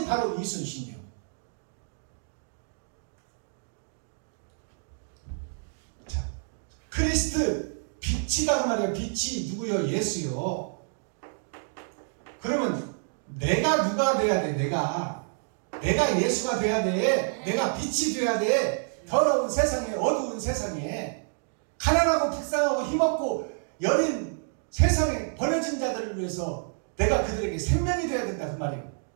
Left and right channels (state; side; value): silent; left; digital silence